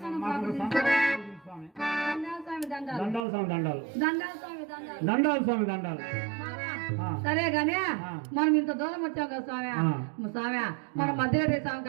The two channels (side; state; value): left; drops out; at 3.2 s